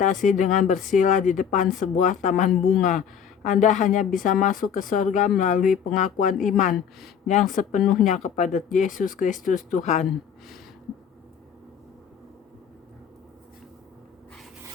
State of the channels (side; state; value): right; quieter; 7.8 dB